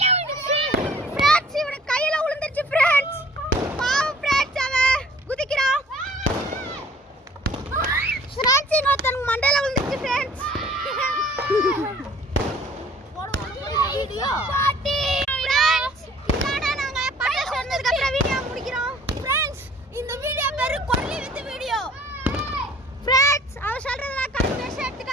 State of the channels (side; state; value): both; normal; correlation 0.53